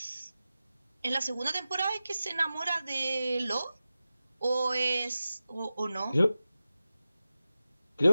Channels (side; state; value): both; inverted; correlation -0.94